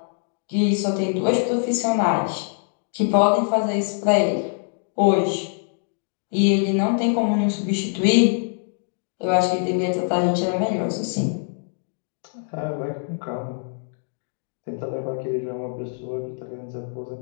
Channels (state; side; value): silent; right; 63 dB below the other